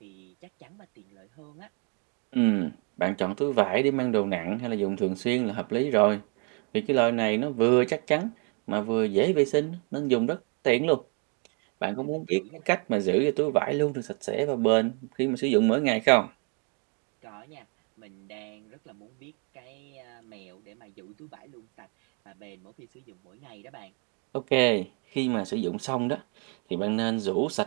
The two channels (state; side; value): quieter; left; 36.9 dB